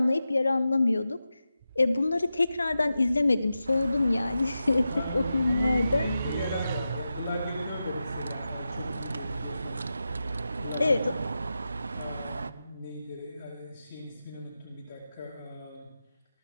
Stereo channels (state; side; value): inverted; both; correlation -0.91